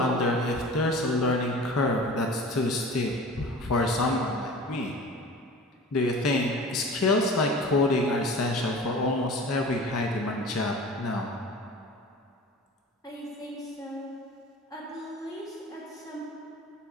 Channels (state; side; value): normal; both; correlation 0.39